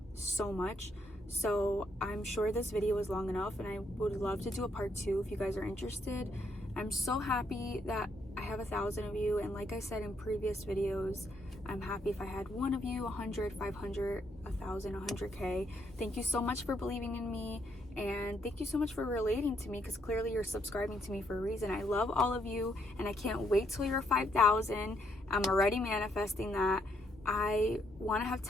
so much. So I'm sure this video is long enough, and I would love to do a part 2 if you guys are interested. I'm so happy that I have 1,000 of you, and like I said in previous videos, I'm happy if I had 1 of you, 100, 500, 1,000, 100K. Thank you so much for believing in me, and thank you so much for relating to me, because clearly you're subscribing to me for a reason. I love all of you, and I can't wait till you're 5,000. I'm already manifesting that. I want to have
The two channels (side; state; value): both; normal; correlation 0.74